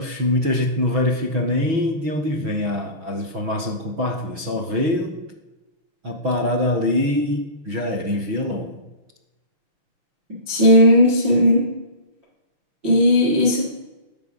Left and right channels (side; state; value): left; late; 6.2 ms